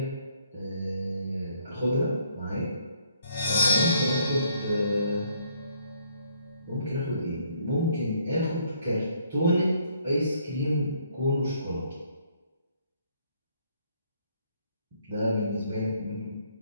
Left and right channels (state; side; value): inverted; both; correlation -0.67